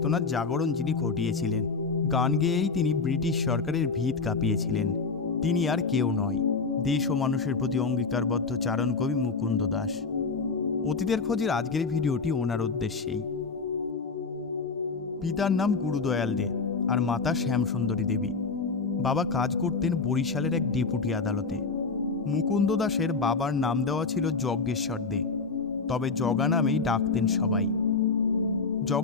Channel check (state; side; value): quieter; right; 4.5 dB